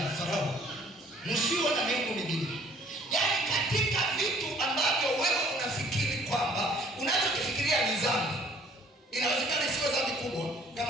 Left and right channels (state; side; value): normal; both; correlation 0.57